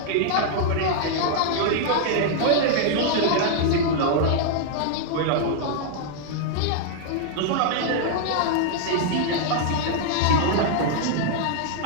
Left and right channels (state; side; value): different; both; correlation -0.01